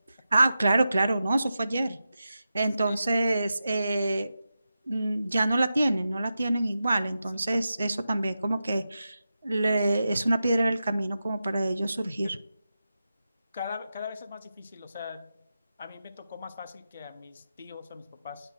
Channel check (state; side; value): inverted; both; correlation -0.91